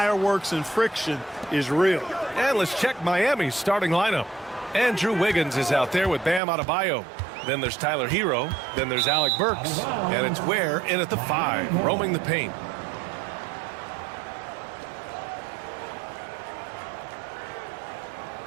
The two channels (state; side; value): drops out; left; at 6.4 s